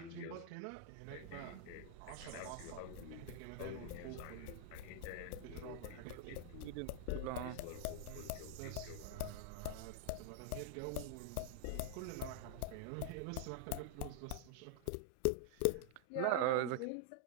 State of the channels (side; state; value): both; different; correlation 0.00